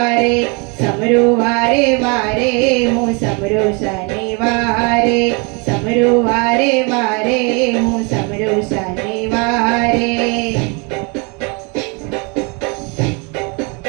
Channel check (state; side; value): quieter; left; 31.9 dB